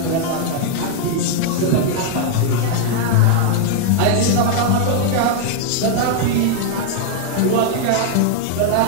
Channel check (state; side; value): different; both; correlation 0.00